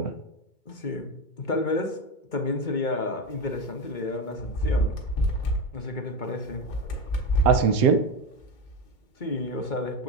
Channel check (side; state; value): right; late; 2.2 ms